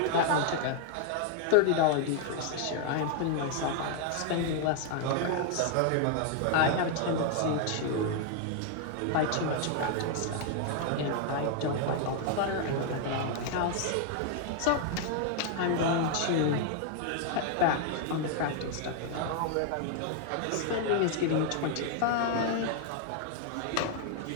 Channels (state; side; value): different; both; correlation 0.00